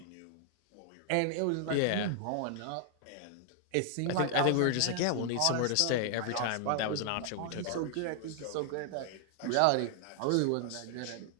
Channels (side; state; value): both; different; correlation 0.00